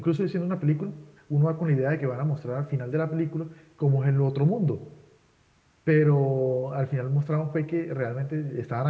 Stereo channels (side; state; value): both; identical; correlation 1.00